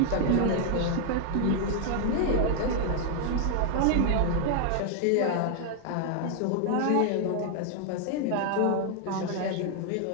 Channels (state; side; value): different; both; correlation 0.00